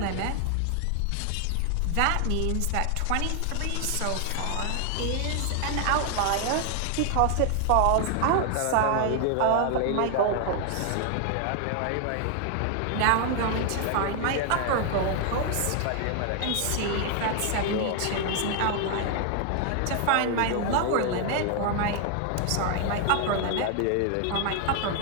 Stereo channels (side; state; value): both; different; correlation 0.00